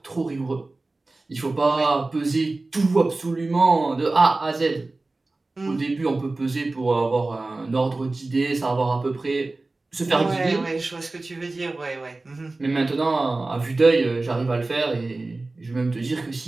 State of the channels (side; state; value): left; quieter; 3.2 dB